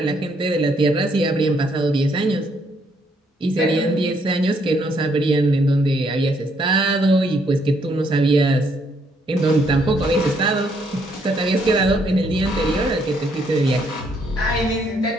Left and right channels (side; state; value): both; normal; correlation 0.71